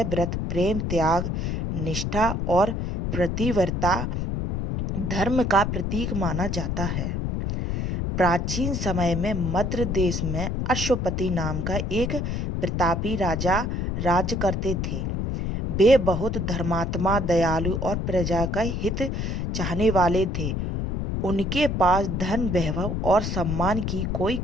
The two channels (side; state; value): left; noise; rumble, 1 dB below the sound